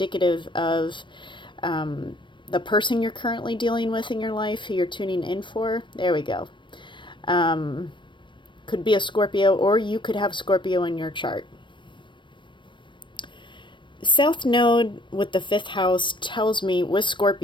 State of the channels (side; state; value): right; late; 0.23 ms